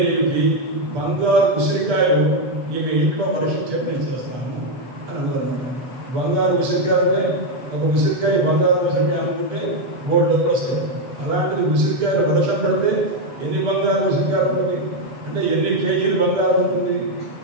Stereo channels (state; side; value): late; left; 8.1 ms